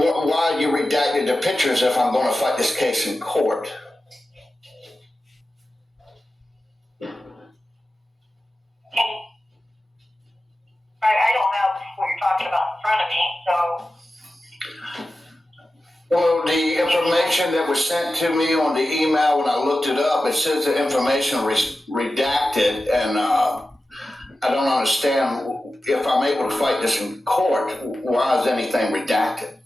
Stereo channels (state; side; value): normal; both; correlation 0.94